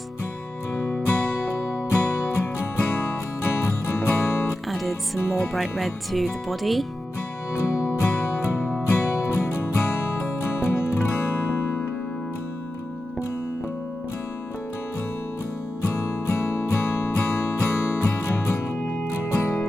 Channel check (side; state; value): both; normal; correlation 0.92